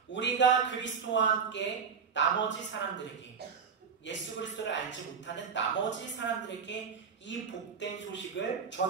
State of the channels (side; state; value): left; quieter; 6.2 dB